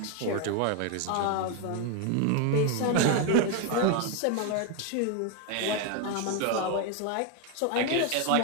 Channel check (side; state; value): both; different; correlation 0.01